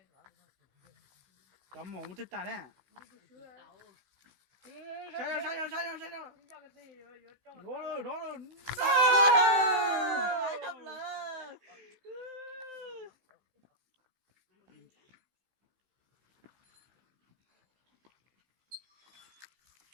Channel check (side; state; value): left; late; 15 ms